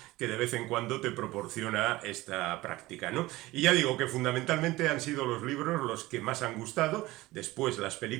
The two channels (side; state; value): left; quieter; 18.9 dB